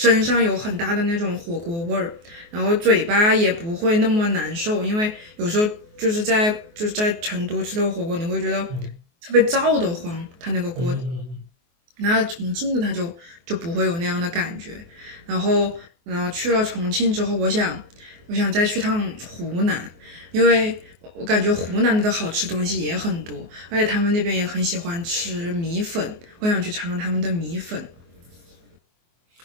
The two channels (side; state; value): left; late; 24 ms